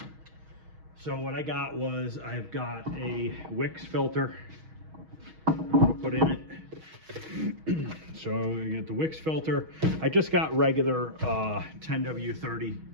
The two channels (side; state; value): left; late; 6.3 ms